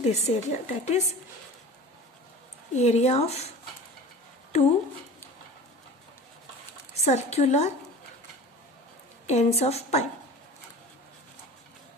area, that is area of two circular ends of pipe.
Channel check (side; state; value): both; normal; correlation 0.38